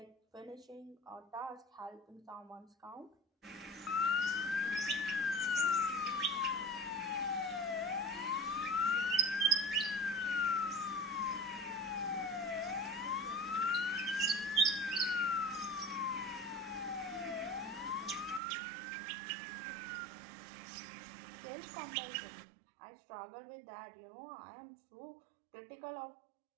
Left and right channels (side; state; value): left; drops out; at 18.4 s